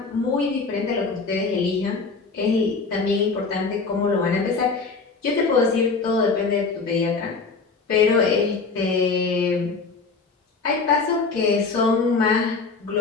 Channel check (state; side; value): quieter; right; 4.4 dB